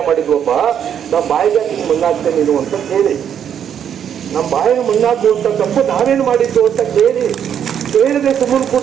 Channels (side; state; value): left; quieter; 8.8 dB